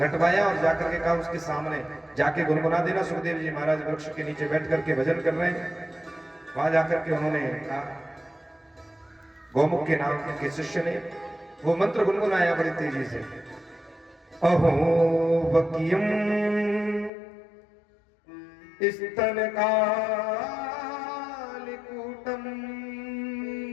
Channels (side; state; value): right; drops out; at 17.1 s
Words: और जाकर के कहा उसके सामने जाके गुनगुना देना। सुखदेव जी महाराज वृक्ष के नीचे बैठ करके भजन कर रहे हैं। वहां जाकर के उन्होंने कहा, गौमुख के नाम के शिष्य ने वो मंत्र गुनगुनाया बड़ी तेजी से। अहो वकीयम स्तन कालिकूटम